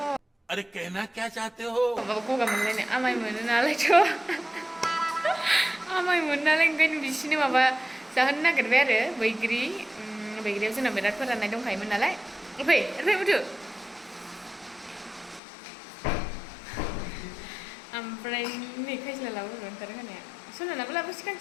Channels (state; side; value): drops out; right; at 15.4 s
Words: अरे कहना क्या चाहते हो? Goga mana ni, amai mana nalar tu, amai mana nalar kan di sini apa sahaja nak kerja baigri tu nak berat pernah naik dong kai mana nalar, apa betul? Amprai ni kai selalu lalu orang terang ya, so nak apa sih kan